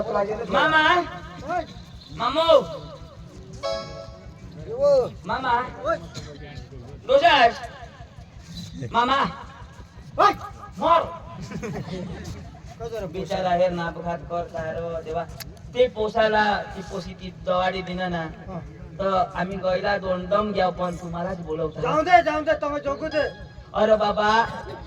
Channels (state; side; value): identical; both; correlation 1.00